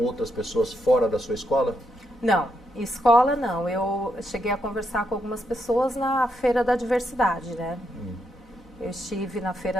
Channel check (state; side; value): normal; both; correlation 0.80